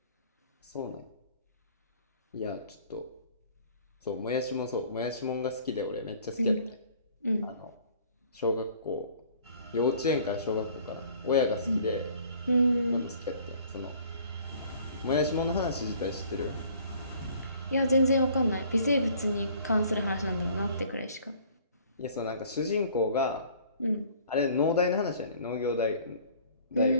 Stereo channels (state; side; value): inverted; both; correlation -0.54